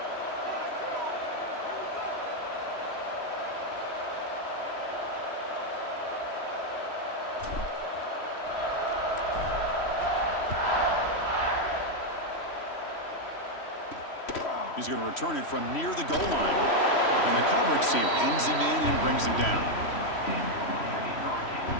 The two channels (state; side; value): late; right; 3.1 ms